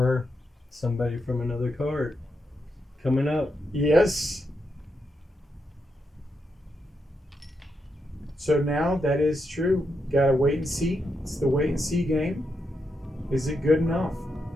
somebody from another card coming up. Yes. So now that is true. Gotta wait and see. It's the wait and see game. Is it good enough?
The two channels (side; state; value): both; normal; correlation 0.83